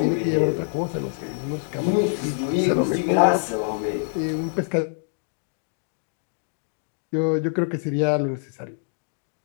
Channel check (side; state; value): right; silent; digital silence